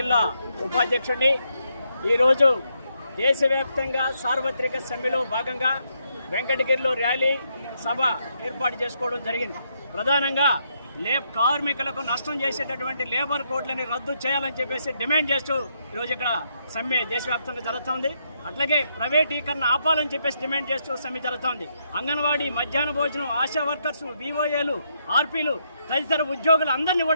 ఉపాధ్యక్షుడిని. ఈరోజు దేశవ్యాప్తంగా సార్వత్రిక సమ్మెలో భాగంగా వెంకటగిరిలో ర్యాలీ సభ ఏర్పాటు చేసుకోవడం జరిగింది. ప్రధానంగా కార్మికులకు నష్టం చేసేటటువంటి లేబర్ కోడ్లని రద్దు చేయాలని చెప్పేసి డిమాండ్ చేస్తూ ఈరోజు ఇక్కడ సమ్మె దేశవ్యాప్తంగా జరుగుతోంది. అట్లాగే ప్రైవేటీకరణ ఆపాలని చెప్పేసి డిమాండ్ చేస్తూ సమ్మె జరుగుతోంది. అంగన్వాడీ, మధ్యాహ్న భోజనం, ఆశా వర్కర్స్, వివోఏలు, ఆర్పీలు తదితర ఉద్యోగులు అందరినీ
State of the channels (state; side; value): inverted; both; correlation -0.77